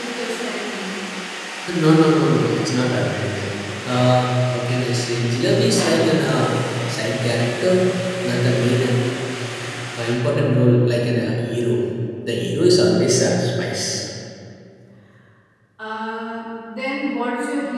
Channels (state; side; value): identical; both; correlation 1.00